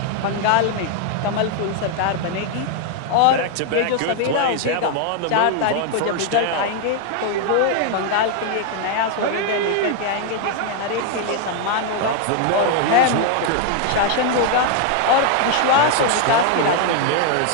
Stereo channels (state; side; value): different; both; correlation 0.00